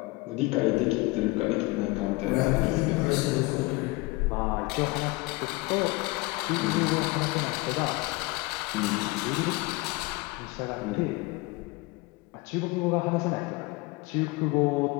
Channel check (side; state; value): right; quieter; 23.6 dB